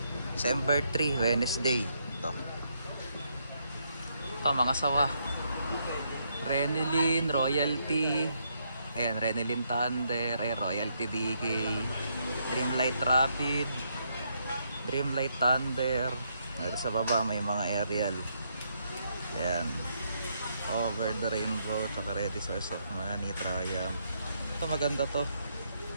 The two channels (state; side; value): inverted; both; correlation -0.76